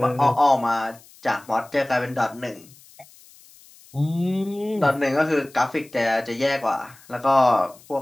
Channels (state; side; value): noise; left; hiss, 25 dB below the sound